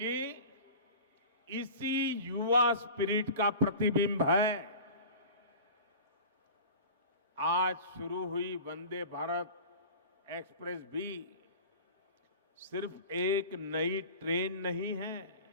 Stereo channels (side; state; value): both; inverted; correlation -0.37